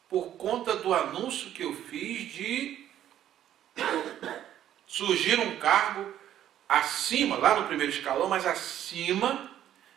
por conta do anúncio que eu fiz de surgir um cargo acima, lá no primeiro escalão, mas acima,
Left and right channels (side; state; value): left; quieter; 11.4 dB